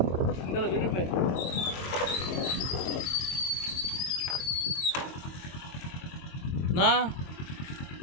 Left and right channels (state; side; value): late; right; 22 ms